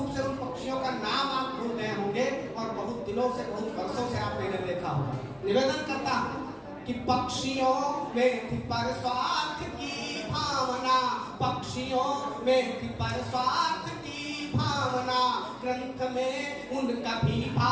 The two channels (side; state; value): both; identical; correlation 1.00